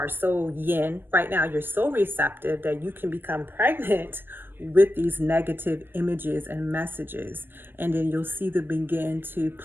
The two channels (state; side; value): late; left; 0.097 ms